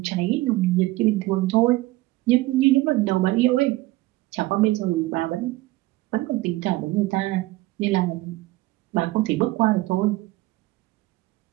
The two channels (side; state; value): left; quieter; 18.7 dB